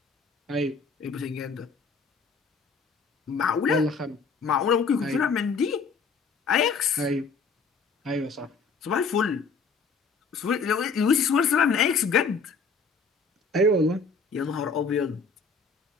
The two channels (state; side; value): quieter; right; 4.6 dB